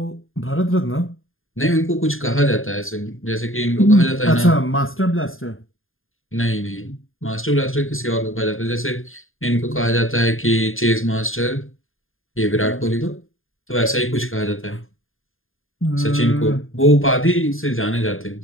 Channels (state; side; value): late; right; 0.60 ms